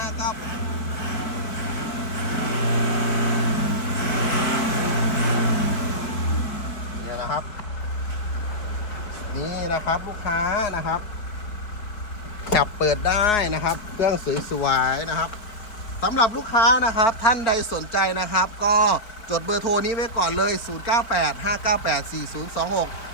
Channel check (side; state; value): right; late; 4.7 ms